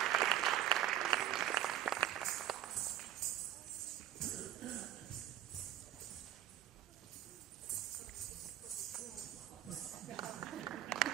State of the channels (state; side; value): quieter; left; 11.4 dB